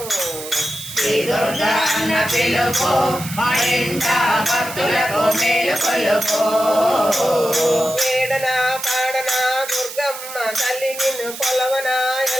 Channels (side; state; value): right; noise; hiss, 11 dB below the sound